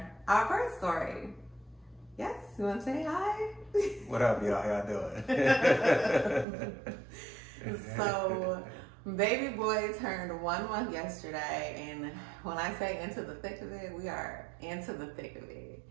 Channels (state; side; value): drops out; left; at 6.5 s